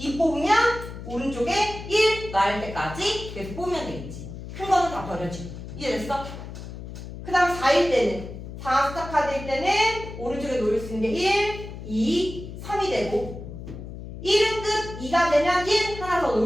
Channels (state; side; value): noise; left; hum, 11 dB below the sound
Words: 뽑으면 오른쪽에 1 나올 때까지 계속 뽑으면 되겠지. 큰 거는 다 버려지고. 이해됐어? 그 다음 4일 때는 4 숫자 카드일 때는 오른쪽에 놓을 수 있는 게 1, 2, 3이 되고 1은 끝, 2가 되면 1 하나 더